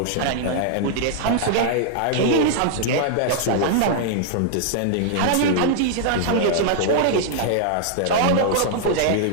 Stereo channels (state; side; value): different; both; correlation -0.01